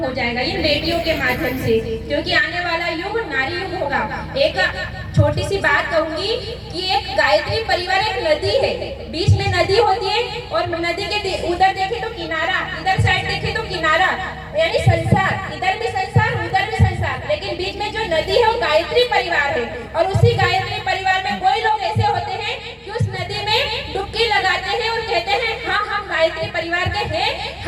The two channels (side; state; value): both; identical; correlation 1.00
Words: हो जाएगा इन बेटियों के माध्यम से। क्योंकि आने वाला युग नारी युग होगा। एक छोटी सी बात कहूंगी कि एक गायत्री परिवार एक नदी है, बीच में नदी होती है और नदी के उधर देखे तो किनारा, इधर साइड देखे तो किनारा, यानी संसार, इधर भी संसार उधर भी संसार, लेकिन बीच में जो नदी है वो गायत्री परिवार है। और उसी गायत्री परिवार में कोई लोग ऐसे होते हैं कि उस नदी में डुबकी लगाते हैं और कहते हैं हाँ हम गायत्री परिवार के हैं,